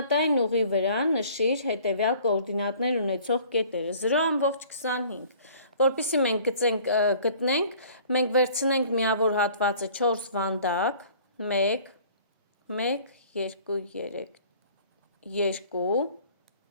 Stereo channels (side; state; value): both; inverted; correlation -0.52